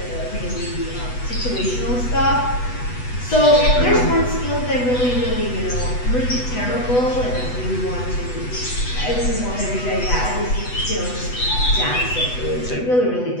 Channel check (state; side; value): late; right; 8.1 ms